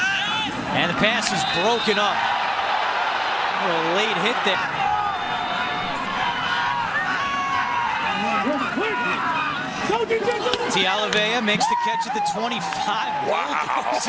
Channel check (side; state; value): both; identical; correlation 1.00